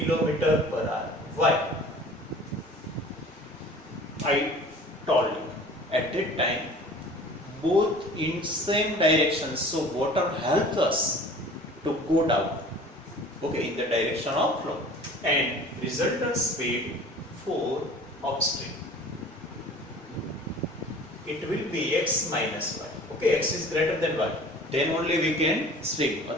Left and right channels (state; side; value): normal; both; correlation 0.45